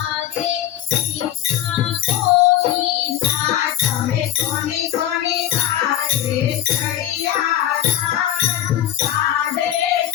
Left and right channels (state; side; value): quieter; right; 12.2 dB